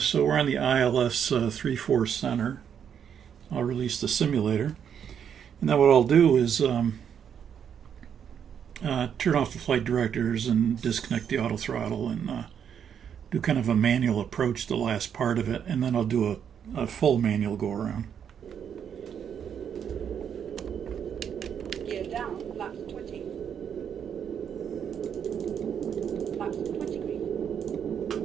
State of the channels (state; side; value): quieter; left; 8.2 dB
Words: we're on the ILS 3-4 center. I'll release the simulator. And then what I'll do is turn off the flight directors and disconnect the auto throttle and do kind of a manual approach to the last part of it. And then I'll do a full manual go around. Gear down, flaps 20. Flaps 20 green.